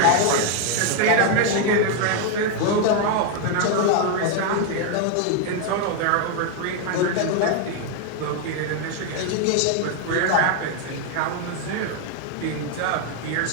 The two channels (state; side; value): different; both; correlation 0.01